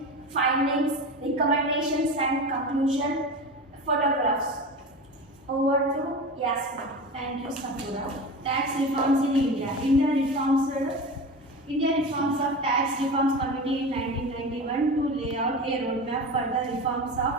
findings, recommendations and conclusion, photographs. Over to Yasmin. Thank you, Safura. Tax reforms in India. India reforms of Tax Reforms Committee in 1991 to lay out a roadmap for the reforms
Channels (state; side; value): normal; both; correlation 0.29